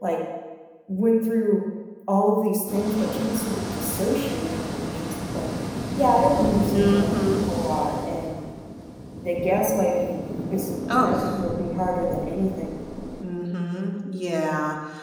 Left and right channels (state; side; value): identical; both; correlation 1.00